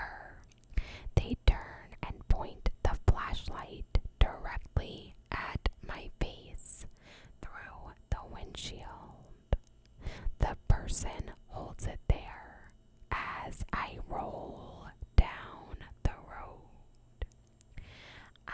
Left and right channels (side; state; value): both; identical; correlation 1.00